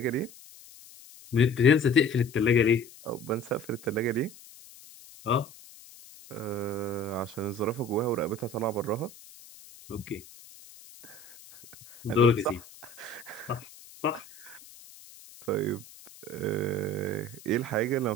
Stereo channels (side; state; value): left; noise; hiss, 20 dB below the sound